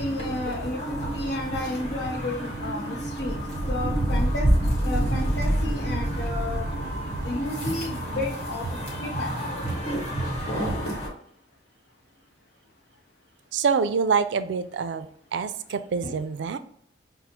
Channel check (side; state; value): both; normal; correlation 0.47